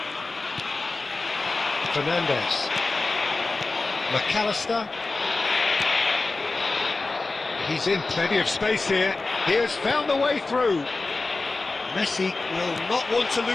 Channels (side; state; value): right; quieter; 3.5 dB